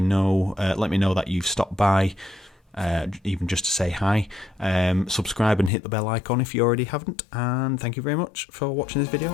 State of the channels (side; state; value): right; drops out; at 5.7 s